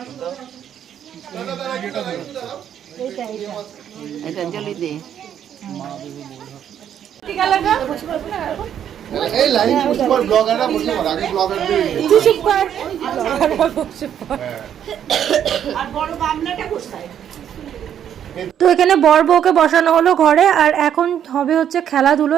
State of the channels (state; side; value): quieter; left; 9.5 dB